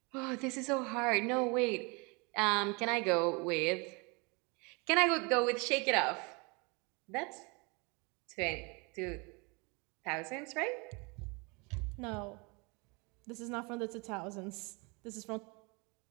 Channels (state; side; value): quieter; left; 29.4 dB